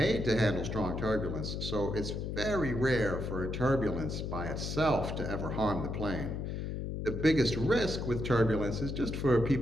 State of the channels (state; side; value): noise; left; hum, 4 dB below the sound